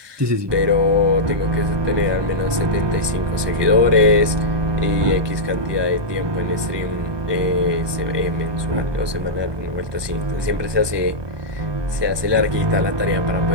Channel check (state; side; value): late; left; 1.2 ms